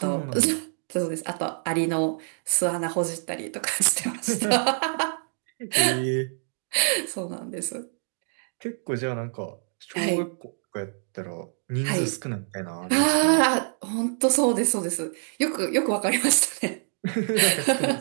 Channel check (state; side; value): silent; left; 61 dB below the other